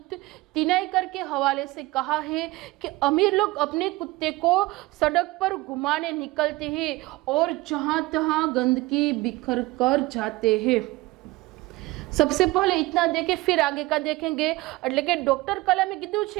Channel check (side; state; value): left; quieter; 20.7 dB